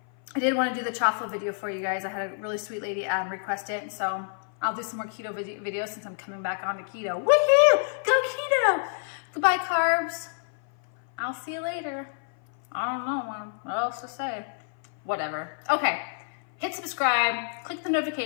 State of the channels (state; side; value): silent; right; 56 dB below the other